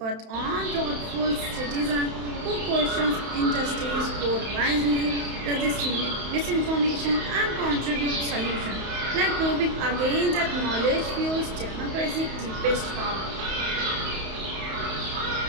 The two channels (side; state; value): left; late; 31 ms